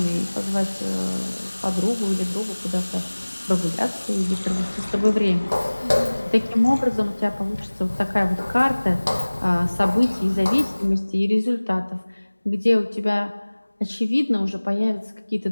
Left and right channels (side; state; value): both; inverted; correlation -1.00